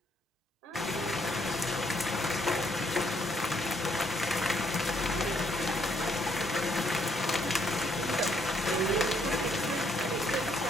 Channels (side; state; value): both; normal; correlation 0.70